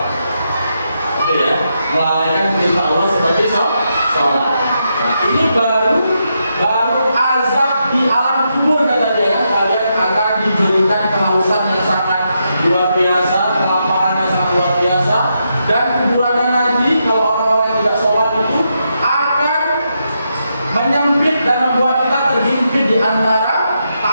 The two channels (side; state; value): both; inverted; correlation -0.82